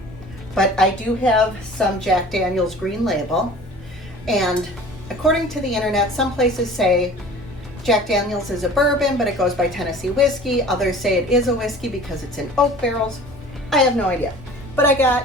but I do have some Jack Daniel's Green Label. And according to the internet, some places say Jack Daniel's is a bourbon, but it goes by Tennessee whiskey. Others say it is a whiskey because it's in oak barrels. I have no idea. But I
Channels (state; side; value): normal; both; correlation 0.44